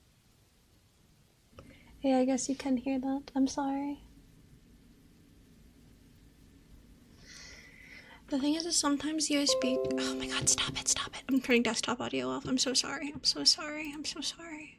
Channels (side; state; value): both; identical; correlation 1.00